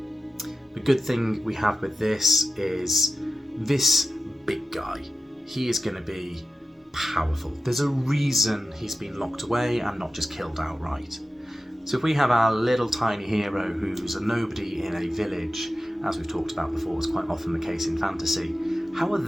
The good thing we have with this is this big guy, he is going to be powerful. There's a reason he's been locked away and not just killed outright. So if we have our little tiny hero who's a nobody in a village, as we've talked about before, is quite often the case in fantasy, how are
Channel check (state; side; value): normal; both; correlation 0.93